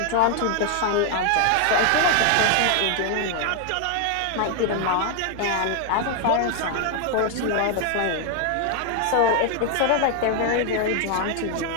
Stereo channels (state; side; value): different; both; correlation 0.00